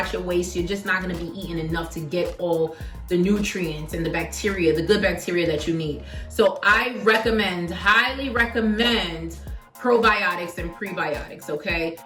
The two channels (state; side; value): identical; both; correlation 1.00